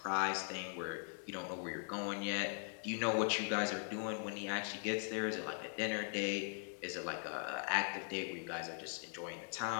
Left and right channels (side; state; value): right; silent; 51 dB below the other